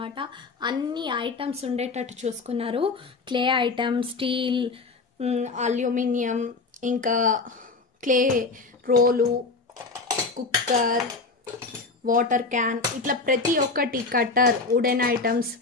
అన్ని ఐటమ్స్ ఉండేటట్టు చూసుకున్నారు. క్లే ఐటమ్స్, స్టీల్, అల్యూమినియం, ఇంకా clay role, cooker, water can, ఇట్లా ప్రతి ఒక్కటి, cutter, wooden items,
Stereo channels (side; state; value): right; quieter; 4.0 dB